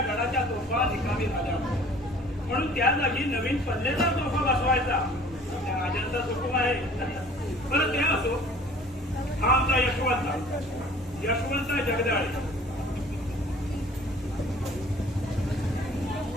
गडाच्या तोफा निकामी झाल्या म्हणून त्या जागी नवीन पल्लेदार तोफा बसवायचा त्या राजांचा हुकूम आहे. बरं ते असो, हा आमचा यशवंत जगदाळे.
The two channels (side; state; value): both; normal; correlation 0.51